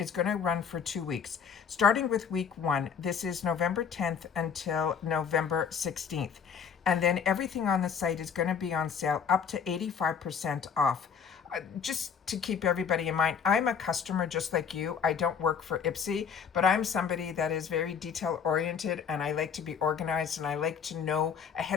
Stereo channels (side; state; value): right; quieter; 6.8 dB